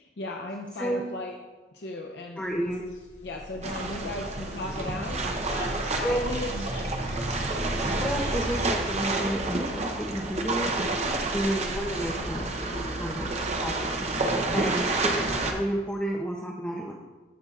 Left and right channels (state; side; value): normal; both; correlation 0.48